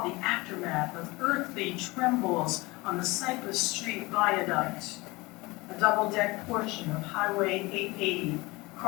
the aftermath of earthly trembles on the Cypress Street Viaduct. A double-deck portion of Highway 880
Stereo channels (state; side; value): quieter; right; 22.8 dB